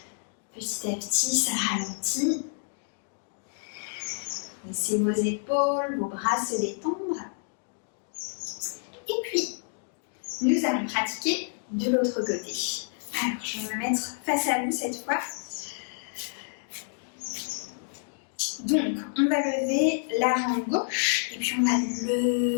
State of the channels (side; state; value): right; silent; digital silence